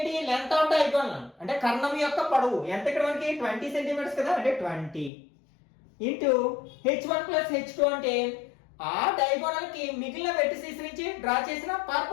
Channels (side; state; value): right; drops out; at 5.1 s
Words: లెంత్ ఆఫ్ డయాగోనల్, అంటే కర్ణం యొక్క పొడవు ఎంత? ఇక్కడ మనకి 20 సెంటీమీటర్స్ కదా, అంటే 20 ఇంటూ h1 ప్లస్ h2 అంటే ఆ డయాగోనల్ కి మిగిలిన వెర్టిసెస్ నుంచి డ్రా చేసిన